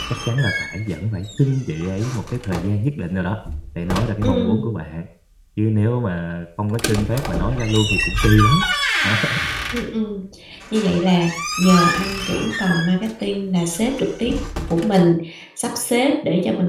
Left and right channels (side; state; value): both; identical; correlation 1.00